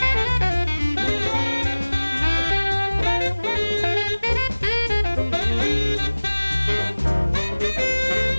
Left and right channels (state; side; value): inverted; both; correlation -1.00